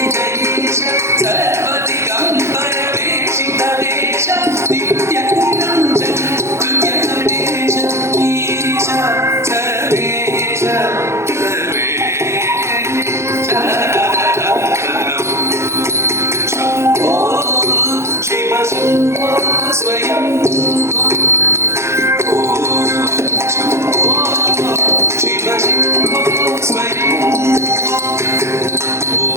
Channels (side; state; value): left; late; 0.13 ms